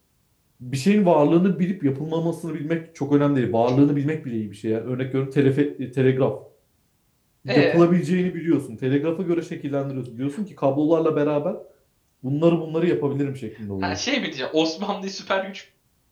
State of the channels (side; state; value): both; identical; correlation 1.00